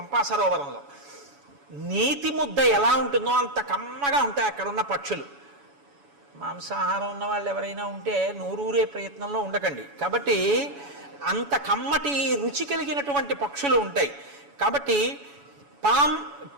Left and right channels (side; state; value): left; late; 7.1 ms